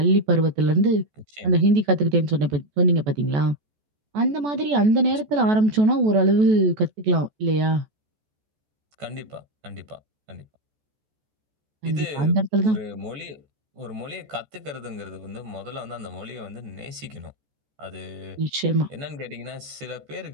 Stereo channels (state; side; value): late; left; 14 ms